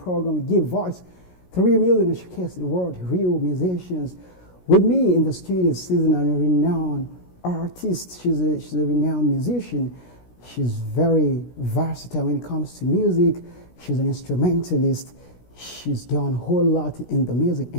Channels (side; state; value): right; late; 16 ms